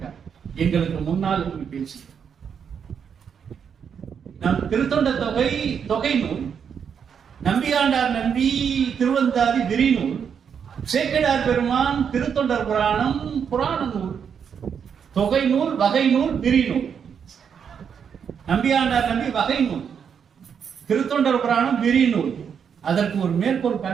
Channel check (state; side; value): quieter; left; 7.3 dB